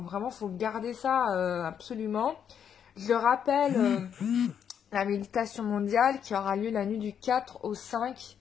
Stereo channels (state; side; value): quieter; right; 8.3 dB